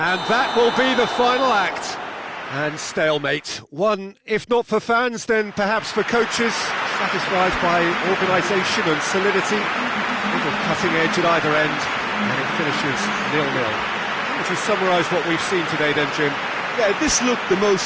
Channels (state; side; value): identical; both; correlation 1.00